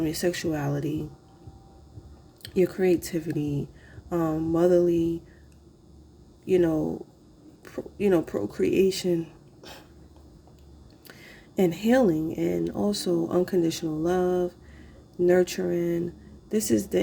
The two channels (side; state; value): both; identical; correlation 1.00